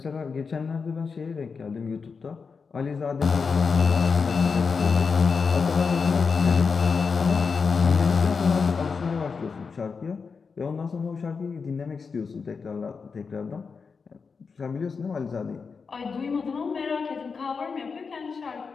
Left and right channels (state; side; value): quieter; right; 5.2 dB